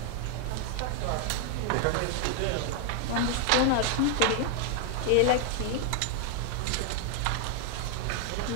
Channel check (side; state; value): both; different; correlation 0.00